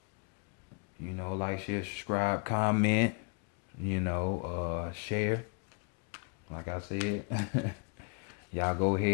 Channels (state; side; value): quieter; right; 36.1 dB